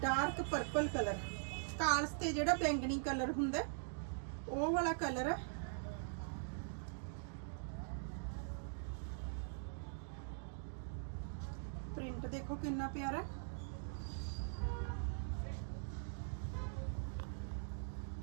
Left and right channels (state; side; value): silent; left; digital silence